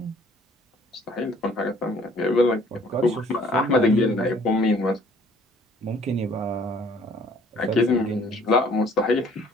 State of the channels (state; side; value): normal; both; correlation 0.57